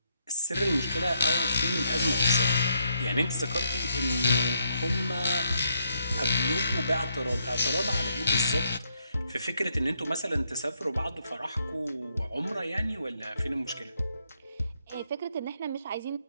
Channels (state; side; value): inverted; both; correlation -0.76